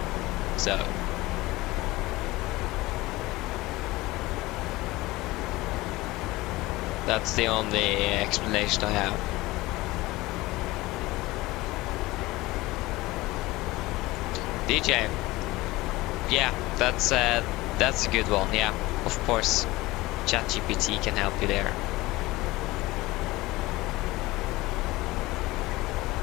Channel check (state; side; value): quieter; right; 19.8 dB